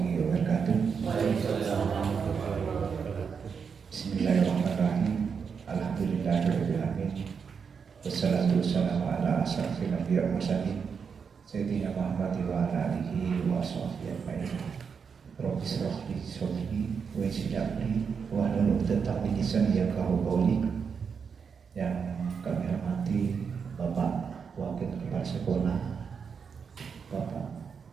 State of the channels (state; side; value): quieter; left; 6.2 dB